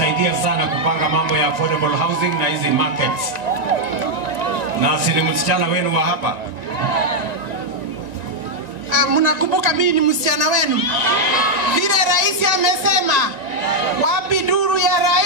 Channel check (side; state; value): left; late; 1.9 ms